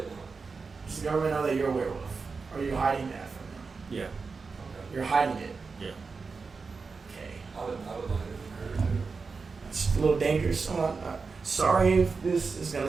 Does the government know that you're a werewolf? Or are you hiding that from them? Yeah, Okay. You're hiding it. yeah. Okay. I would like it. It's a little dangerous. Sorry if this is gonna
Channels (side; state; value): left; quieter; 4.7 dB